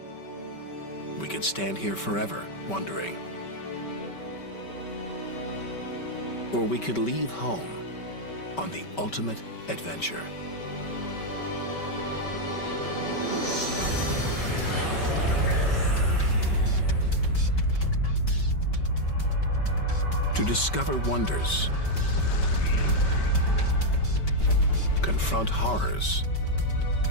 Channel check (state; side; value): late; right; 5.2 ms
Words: We could stand here forever wondering. Or we could leave home on the ultimate adventure. To discover wonders, confront horrors,